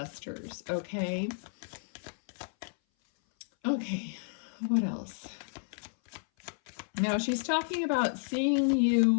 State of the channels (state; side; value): silent; right; 57 dB below the other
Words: okay? Okay, what else? Now, she's talking about seeing